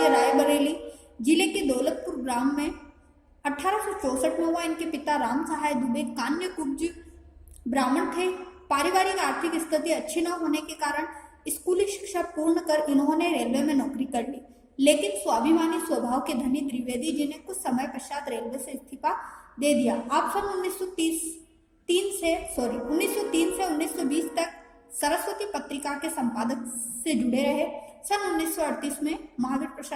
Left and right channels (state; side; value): identical; both; correlation 1.00